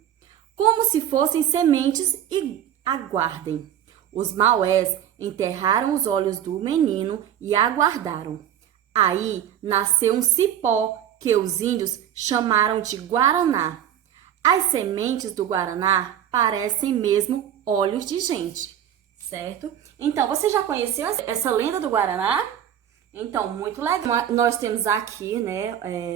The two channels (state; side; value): quieter; left; 10.1 dB